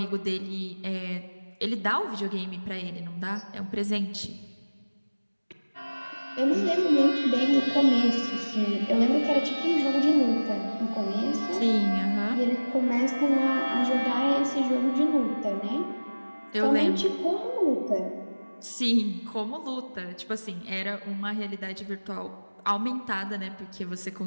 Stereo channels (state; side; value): inverted; both; correlation -1.00